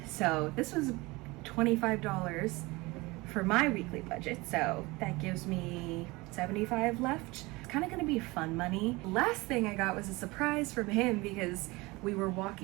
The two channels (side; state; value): left; quieter; 23.0 dB